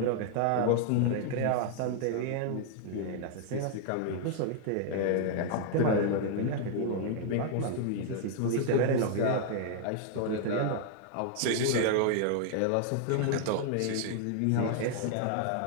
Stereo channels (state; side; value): different; both; correlation 0.00